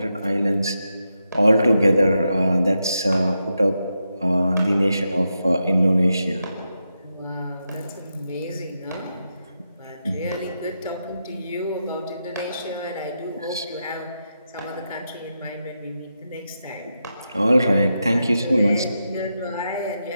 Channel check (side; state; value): both; inverted; correlation -0.86